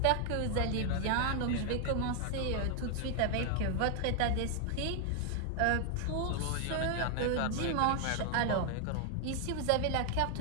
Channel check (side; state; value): both; different; correlation 0.00